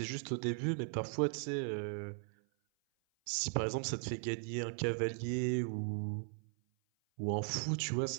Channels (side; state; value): left; silent; 53 dB below the other